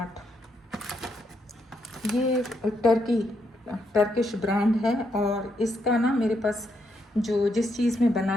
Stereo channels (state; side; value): normal; both; correlation 0.78